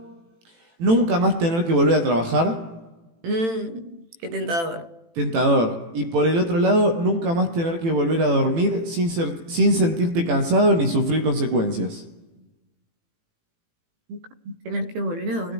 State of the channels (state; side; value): late; left; 18 ms